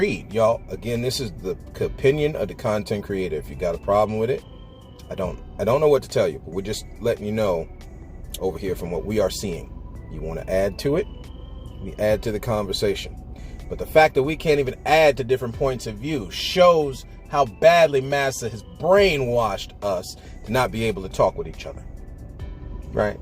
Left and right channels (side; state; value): both; identical; correlation 1.00